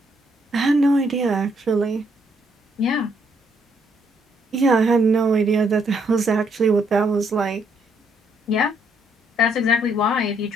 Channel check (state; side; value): normal; both; correlation 0.71